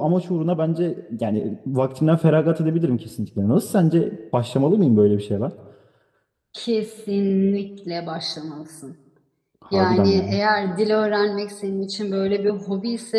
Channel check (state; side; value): identical; both; correlation 1.00